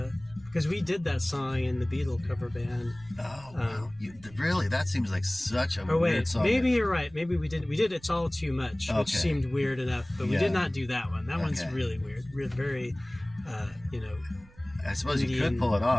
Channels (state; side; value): noise; right; rumble, 23 dB below the sound